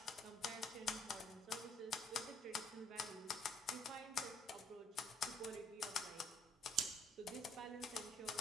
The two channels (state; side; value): normal; both; correlation 0.64